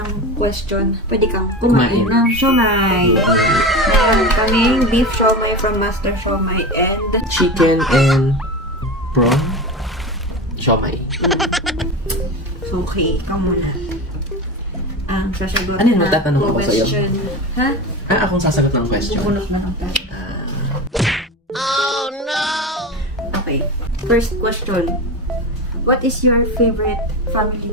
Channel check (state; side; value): normal; both; correlation 0.25